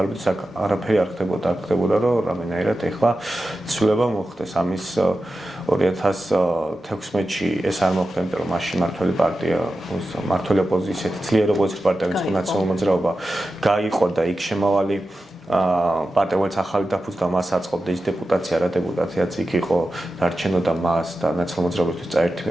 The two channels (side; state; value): both; normal; correlation 0.92